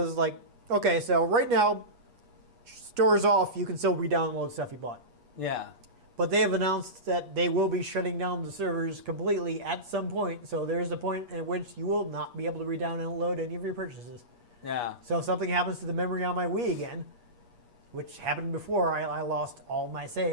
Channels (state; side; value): late; left; 8.4 ms